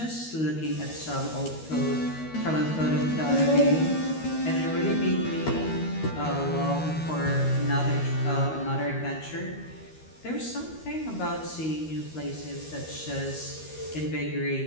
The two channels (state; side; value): late; right; 13 ms